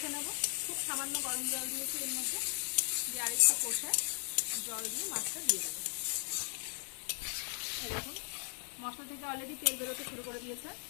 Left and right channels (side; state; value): right; silent; 53 dB below the other